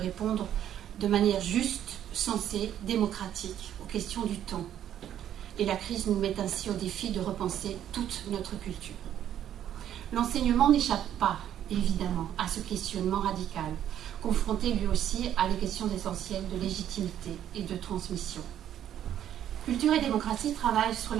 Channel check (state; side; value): quieter; left; 10.7 dB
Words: de manière juste, sensée, démocratique aux questions du temps. Et la crise nous met ainsi au défi de repenser toute notre culture. L'enseignement n'échappe pas, évidemment, à ce questionnement radical, confronté lui aussi à les questions essentielles de légitimité et de transmission. Culture et démocratie travaillent sur